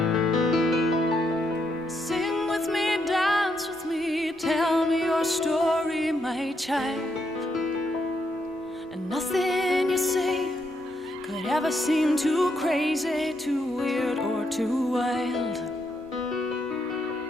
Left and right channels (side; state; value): both; normal; correlation 0.78